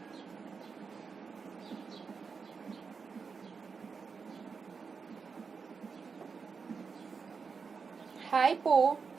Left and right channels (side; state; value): left; quieter; 5.3 dB